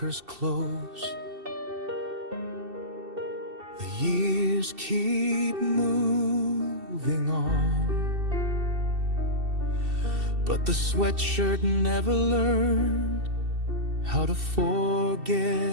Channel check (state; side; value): late; left; 2.7 ms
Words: close, the years keep moving on, but the sweatshirt never learned how to